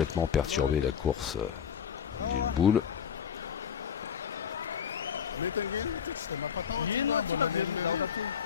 perturber la course d'une boule.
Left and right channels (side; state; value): right; quieter; 7.8 dB